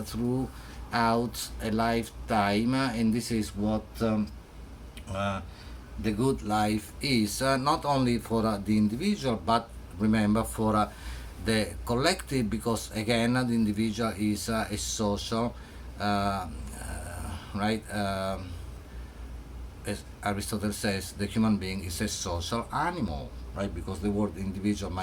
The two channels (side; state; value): both; identical; correlation 1.00